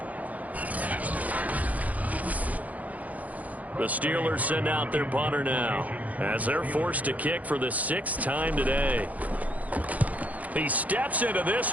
The Steelers send out their punter now as they're forced to kick for the 6th time today. He steps into this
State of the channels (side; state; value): left; late; 0.075 ms